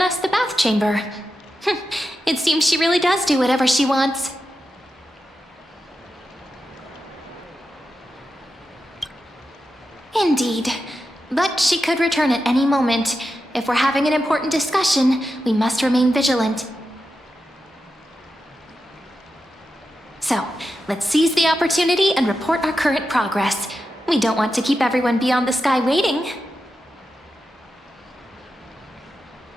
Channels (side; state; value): both; normal; correlation 0.90